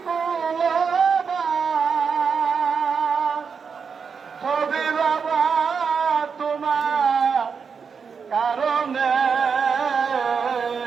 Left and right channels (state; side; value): quieter; left; 5.9 dB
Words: কুলবা ছবি বাবা তোমার কারণে